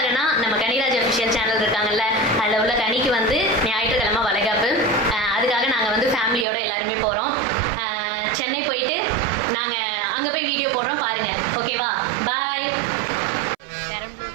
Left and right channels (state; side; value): drops out; left; at 6.5 s